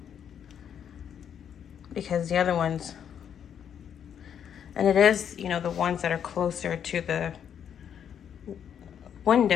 because the other ones, and it is, the ones that are closer to the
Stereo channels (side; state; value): right; quieter; 8.6 dB